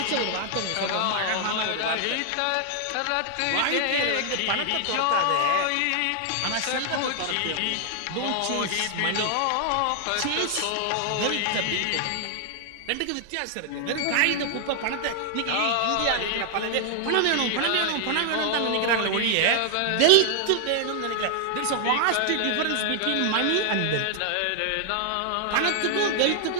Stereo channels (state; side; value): different; both; correlation 0.00